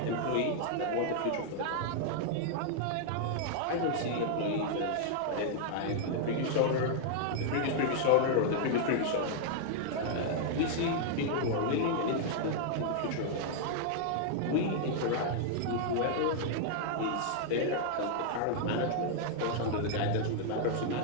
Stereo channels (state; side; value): different; both; correlation -0.01